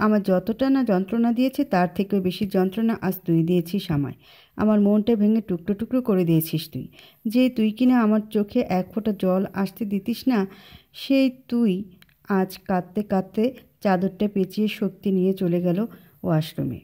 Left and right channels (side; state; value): both; identical; correlation 1.00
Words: আমার যতটা না যন্ত্রণা দিয়েছে তার থেকেও বেশি যন্ত্রণা আজ তুই দিয়েছিস আমায়। আমার মনটা ভেঙে টুকরো টুকরো করে দিয়েছিস তুই। যে তুই কিনা আমার চোখে এক ফোঁটা জল আসতে দিতিস না, সেই তুই আজ কাঁদতে কাঁদতে চাদরটা পেঁচিয়ে শক্তি নিয়ে চলে গেল ওয়াশরুমে